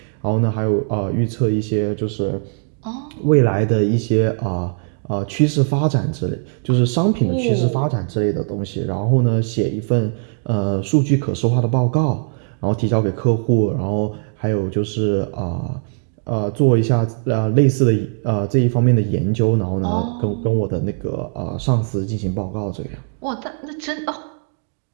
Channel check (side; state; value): left; silent; 57 dB below the other